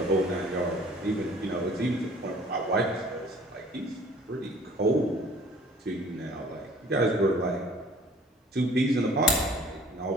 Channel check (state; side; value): normal; both; correlation 0.52